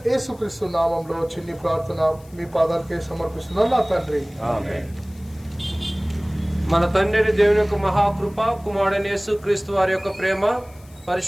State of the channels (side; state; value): left; noise; hiss, 27 dB below the sound